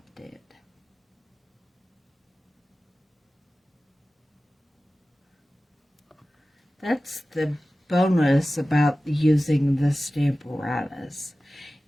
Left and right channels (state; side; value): normal; both; correlation 0.96